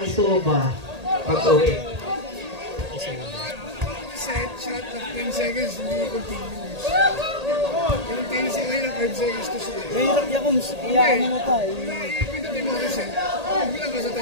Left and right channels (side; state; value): left; late; 1.8 ms